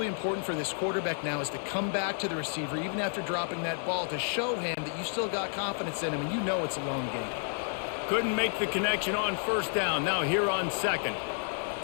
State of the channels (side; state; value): right; silent; 57 dB below the other